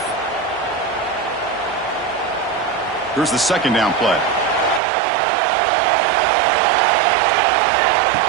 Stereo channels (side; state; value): left; drops out; at 4.8 s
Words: Here's the 2nd down play.